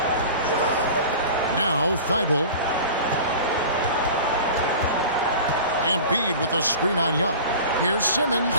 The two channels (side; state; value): both; inverted; correlation -0.37